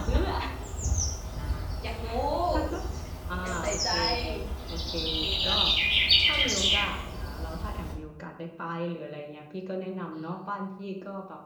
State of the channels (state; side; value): identical; both; correlation 1.00